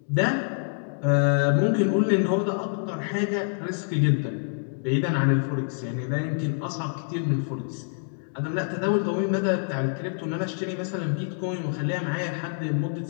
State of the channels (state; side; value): silent; right; digital silence